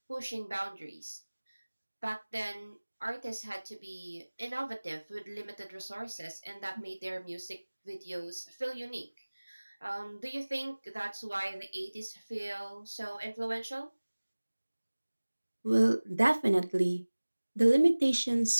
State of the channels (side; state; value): both; inverted; correlation -1.00